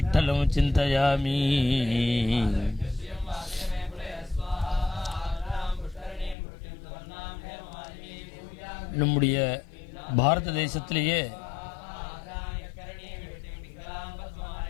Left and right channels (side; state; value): right; drops out; at 6.4 s